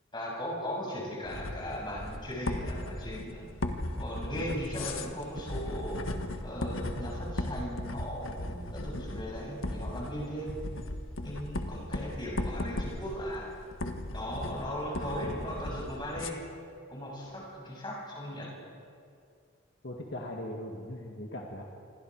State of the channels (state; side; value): normal; both; correlation 0.51